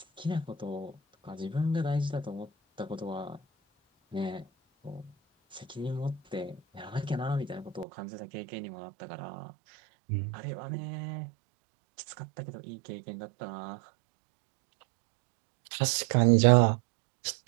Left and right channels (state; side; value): drops out; left; at 7.9 s